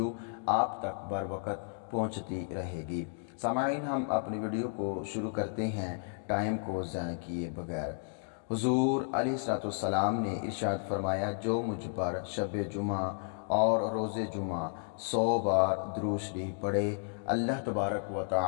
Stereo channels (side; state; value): right; silent; digital silence